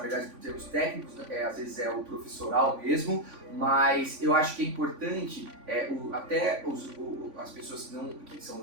por termos técnicos, né? Às vezes é o professoral mesmo, mas eu acho que é importante, as pessoas que são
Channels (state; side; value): late; left; 3.5 ms